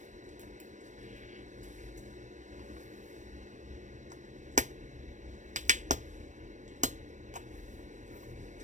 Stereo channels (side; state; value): left; late; 0.35 ms